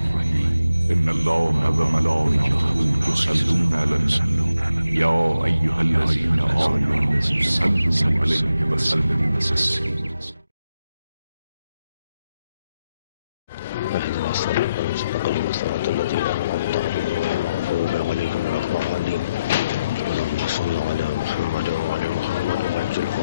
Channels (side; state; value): both; inverted; correlation -0.84